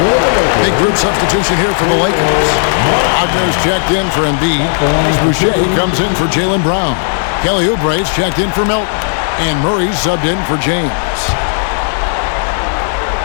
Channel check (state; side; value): silent; right; digital silence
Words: Big group substitution here for the Lakers. Wagner's checked in for Embiid. Boucher comes in for Jaylen Brown. Kelly Oubre's checked in for Milton. And Murray's subbed in for James.